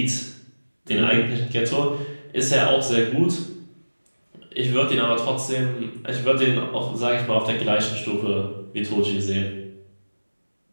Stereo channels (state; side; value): inverted; both; correlation -1.00